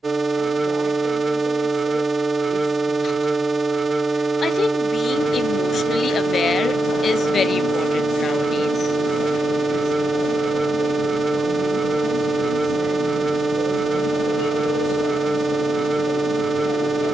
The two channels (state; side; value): normal; both; correlation 0.86